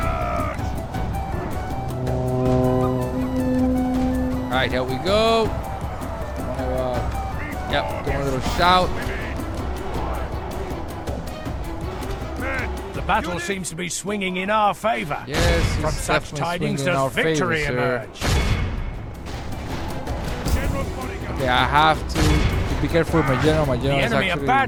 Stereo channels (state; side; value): identical; both; correlation 1.00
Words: Alright, here we go. Yep, do a little shout. The battle seems to be swinging in our favor. Yes, From it's such definitely tidings swinging in our does favor, victory sir. emerge. General's bodyguard. Okay, I have to be careful with my general. My general is enemy are actually